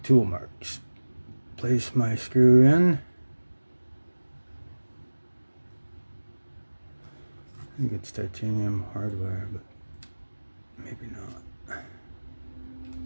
marks. Place my screw in. I think it's titanium hardware, but maybe not.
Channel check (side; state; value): both; inverted; correlation -1.00